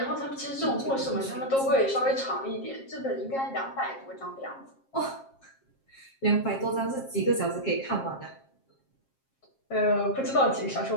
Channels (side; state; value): right; late; 7.4 ms